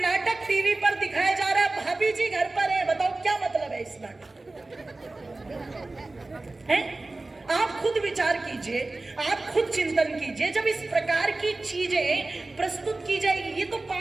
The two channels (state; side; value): quieter; left; 3.1 dB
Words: टीवी पर दिखाया जा रहा है, भाभी जी घर पर है, बताओ क्या मतलब है इस नाटक? है? आप खुद विचार कीजिए, आप खुद चिंतन कीजिए। जब इस प्रकार की चीजें प्रस्तुत की जाएगी, ये तो